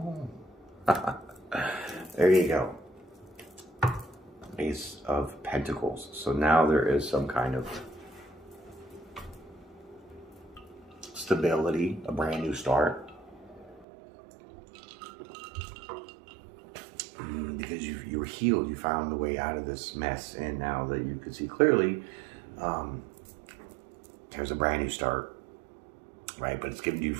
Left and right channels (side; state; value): left; drops out; at 13.9 s